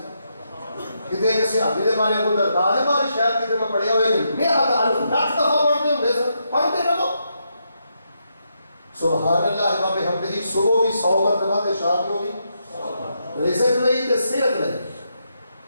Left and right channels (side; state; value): both; inverted; correlation -0.81